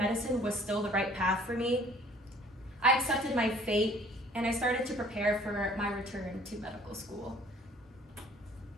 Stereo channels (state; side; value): normal; both; correlation 0.54